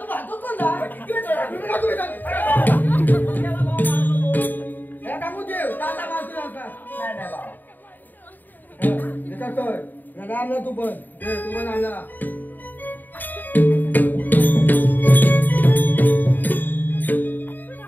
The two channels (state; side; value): late; right; 0.088 ms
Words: तू भातो कोण जा किती वेळ झाला? हे टाकू देव दादा मावशी नका नाही नाही बाबा. विचारतोय दादा आणला तू पण दे तू पण आणला